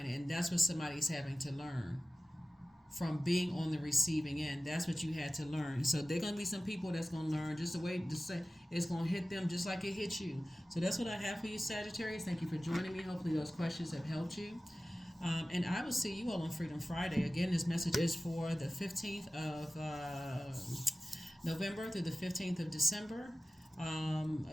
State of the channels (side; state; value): both; normal; correlation 0.96